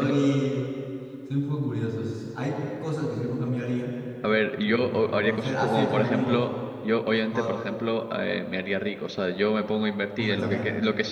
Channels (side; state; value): both; identical; correlation 1.00